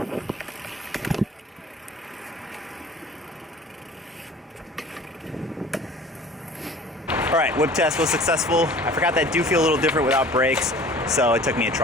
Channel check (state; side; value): normal; both; correlation 0.46